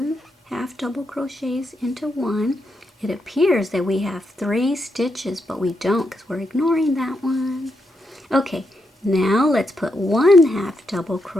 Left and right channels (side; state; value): both; normal; correlation 0.83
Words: half double crochets into 1. It appears that we have 3 stitches, but we don't because we're ignoring that one. Okay, now let's put 1 half double